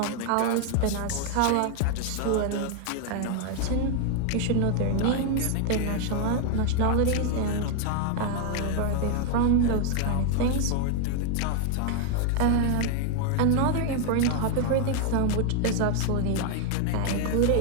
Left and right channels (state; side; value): different; both; correlation 0.01